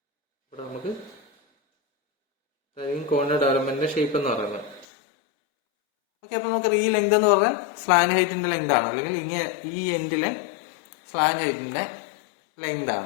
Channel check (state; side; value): drops out; right; at 4.9 s